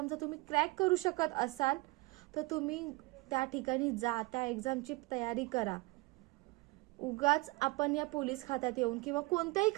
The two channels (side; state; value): left; quieter; 23.4 dB